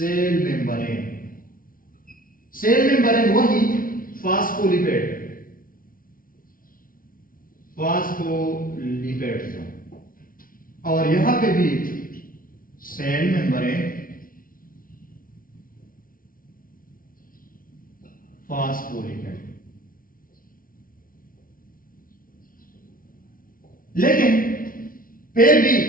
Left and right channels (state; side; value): late; right; 0.41 ms